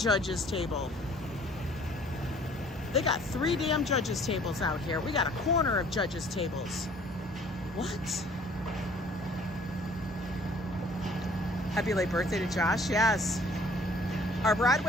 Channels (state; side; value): normal; both; correlation 0.55